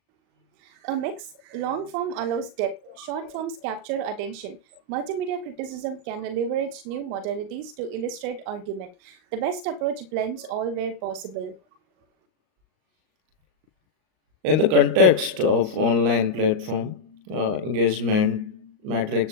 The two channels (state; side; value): late; left; 38 ms